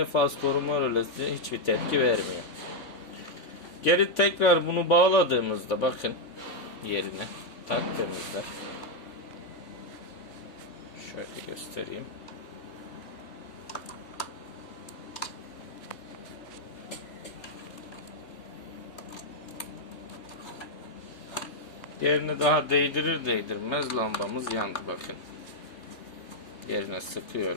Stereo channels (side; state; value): right; late; 3.5 ms